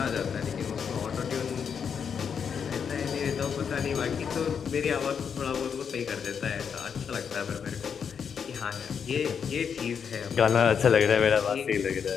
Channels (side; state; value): right; quieter; 7.0 dB